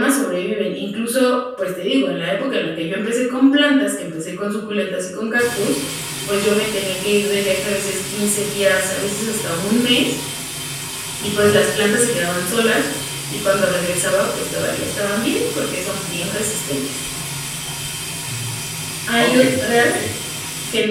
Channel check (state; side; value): identical; both; correlation 1.00